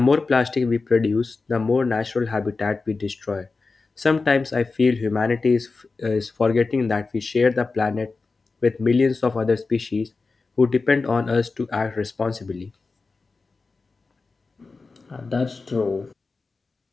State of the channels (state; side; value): quieter; right; 4.0 dB